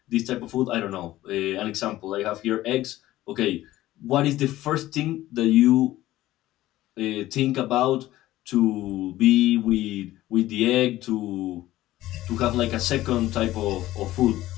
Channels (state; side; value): quieter; right; 15.5 dB